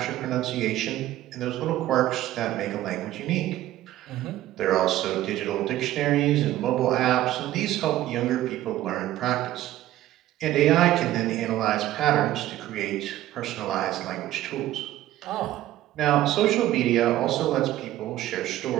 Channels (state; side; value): quieter; left; 14.3 dB